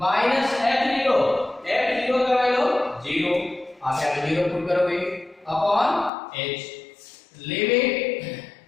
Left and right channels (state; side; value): drops out; right; at 6.1 s